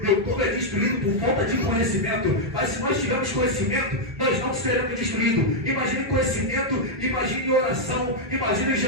meu povo é destruído por falta de conhecimento. Mas se nós tivermos conhecimento, nós não seremos destruídos. Imagine conhecimento, imagine oração, imagine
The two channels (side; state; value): both; normal; correlation -0.03